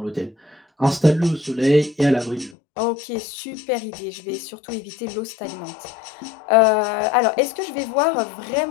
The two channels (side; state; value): right; drops out; at 2.6 s